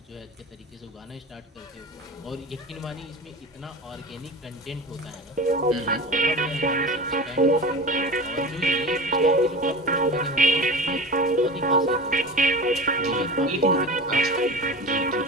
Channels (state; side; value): normal; both; correlation 0.32